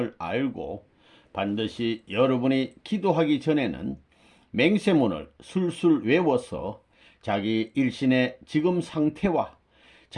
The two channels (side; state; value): both; identical; correlation 1.00